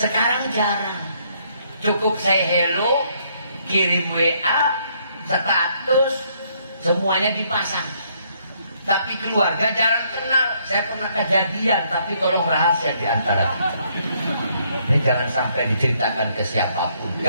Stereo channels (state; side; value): inverted; both; correlation -0.69